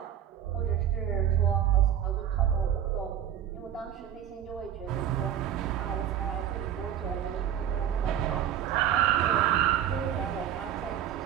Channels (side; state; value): left; quieter; 10.0 dB